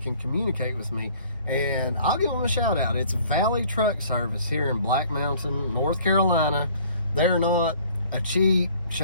can communicate with me, and I'll give them a shout out. It's Valley Truck Service here in Black Mountain, North Carolina. They're not a cheap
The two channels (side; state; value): both; inverted; correlation -0.55